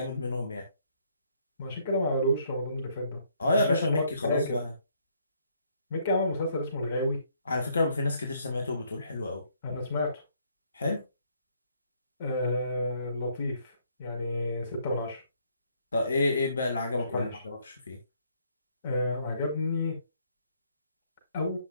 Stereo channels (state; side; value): inverted; both; correlation -0.68